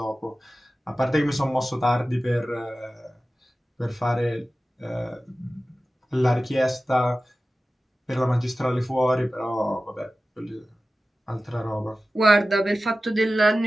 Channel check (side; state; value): both; normal; correlation 0.95